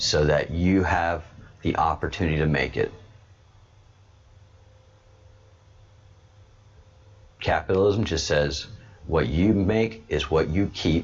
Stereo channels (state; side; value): identical; both; correlation 1.00